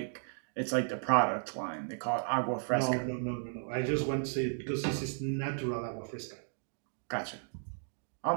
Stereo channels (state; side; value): silent; left; digital silence